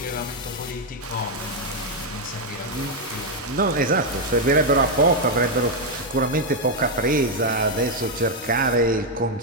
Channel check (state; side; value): normal; both; correlation 0.01